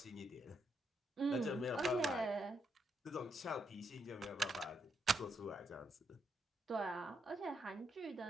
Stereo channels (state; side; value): normal; both; correlation 0.79